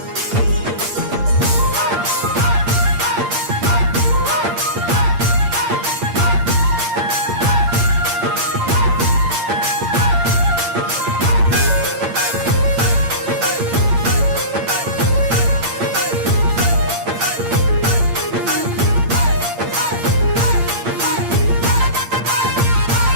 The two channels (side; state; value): left; late; 8.7 ms